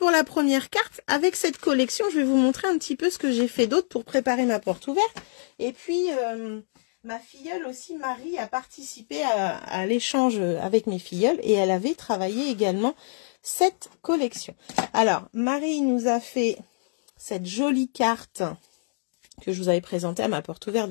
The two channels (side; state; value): right; silent; digital silence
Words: la première carte. Avec cette collection, je vais vous montrer un petit peu ce que j'ai fait d'autre pour préparer ma porte ouverte. Et puis, ma filleule aussi, Marie, a participé à l'échange avec mes filleuls et elle avait travaillé également cette collection. Alors, Marie nous a fait cette jolie carte que je vous avais présenté à ma porte ouverte